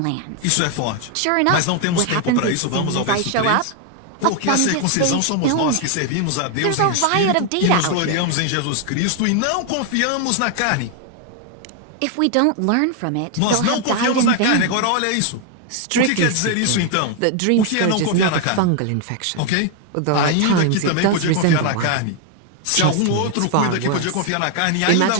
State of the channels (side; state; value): both; different; correlation 0.00